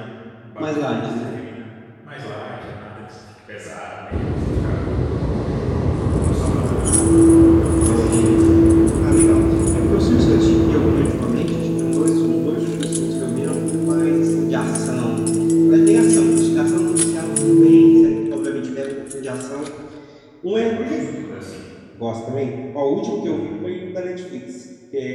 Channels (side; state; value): both; identical; correlation 1.00